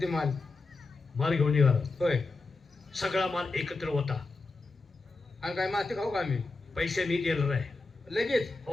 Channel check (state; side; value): quieter; right; 3.6 dB